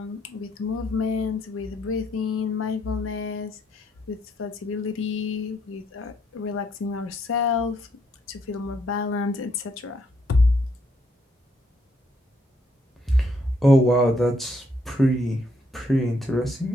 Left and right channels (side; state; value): both; normal; correlation 0.72